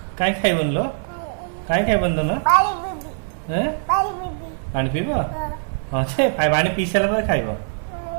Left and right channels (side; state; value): left; silent; digital silence